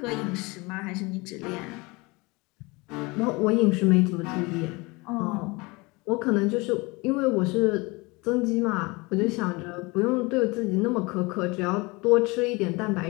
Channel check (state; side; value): quieter; right; 25.3 dB